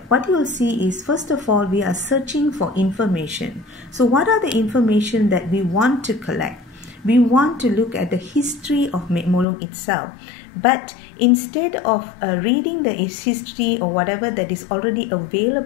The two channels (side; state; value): right; drops out; at 9.5 s